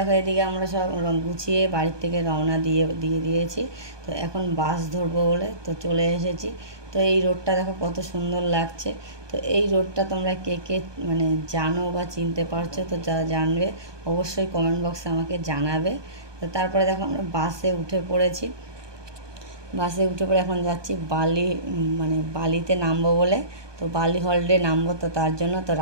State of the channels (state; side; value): late; left; 1.2 ms